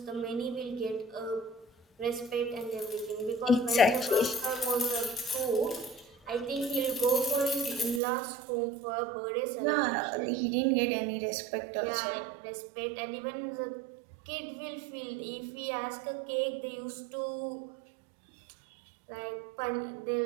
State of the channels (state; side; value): drops out; left; at 8.0 s